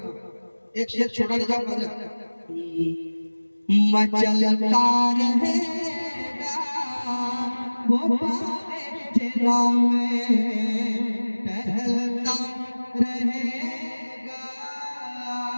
एक शेर छोटा नहीं जाऊंगा। मचलता रहेगा वो जिला में, टहलता रहेगा,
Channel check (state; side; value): inverted; both; correlation -1.00